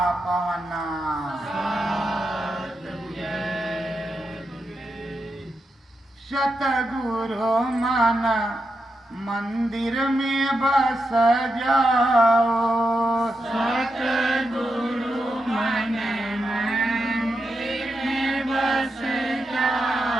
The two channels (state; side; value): normal; both; correlation 0.86